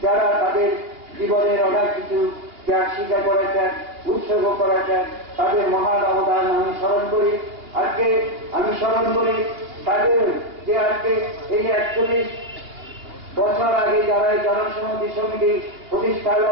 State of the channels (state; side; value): late; left; 2.8 ms